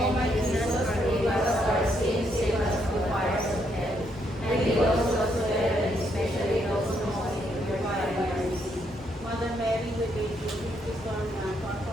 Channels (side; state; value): both; normal; correlation 0.75